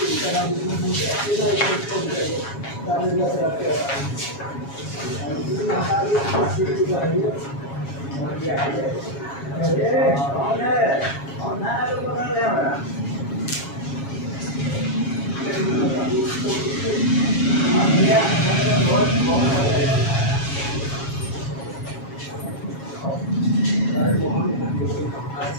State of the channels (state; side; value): late; right; 7.3 ms